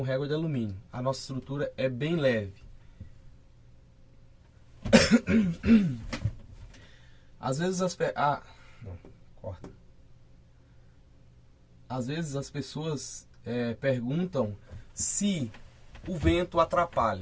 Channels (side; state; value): both; identical; correlation 1.00